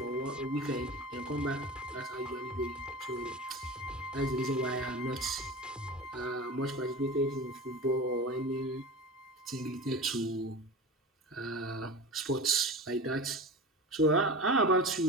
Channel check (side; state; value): both; normal; correlation 0.30